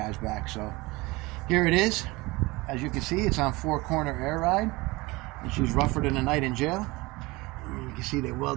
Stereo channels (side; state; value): left; quieter; 22.6 dB